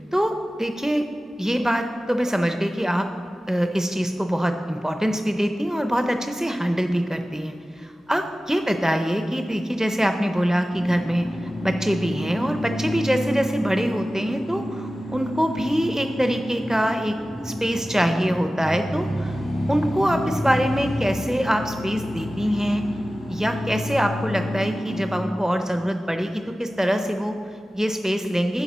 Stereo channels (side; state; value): both; normal; correlation 0.96